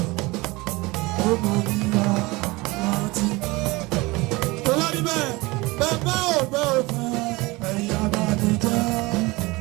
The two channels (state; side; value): quieter; left; 22.9 dB